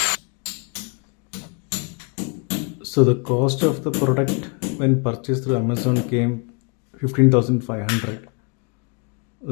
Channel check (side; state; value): right; quieter; 35.6 dB